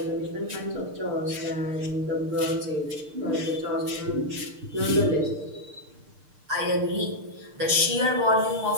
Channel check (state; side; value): late; left; 6.6 ms